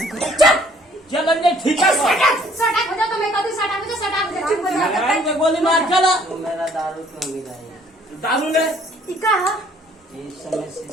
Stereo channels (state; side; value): normal; both; correlation 0.60